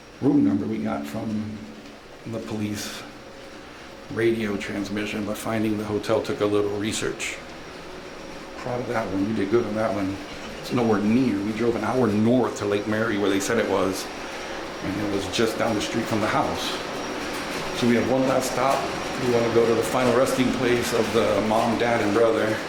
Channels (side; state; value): both; identical; correlation 1.00